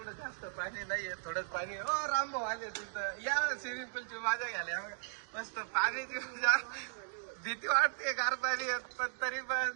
जास्त पाणी नाहीये थोडंच पाणी. ओ रामभाऊ आले तुमचं या स्विमिंग पूलची मजा घ्यायला मस्त पाण्याची मजा. भीती वाटते गार पाणी पण तरी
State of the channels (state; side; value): silent; left; digital silence